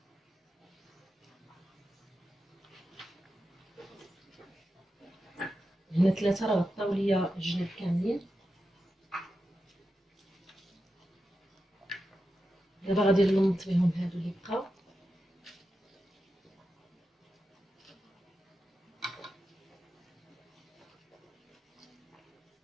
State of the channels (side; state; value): both; normal; correlation 0.90